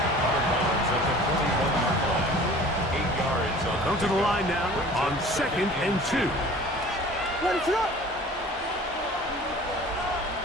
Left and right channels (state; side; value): normal; both; correlation 0.45